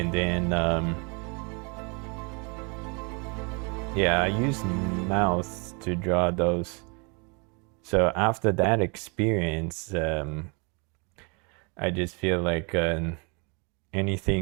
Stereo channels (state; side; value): quieter; left; 33.2 dB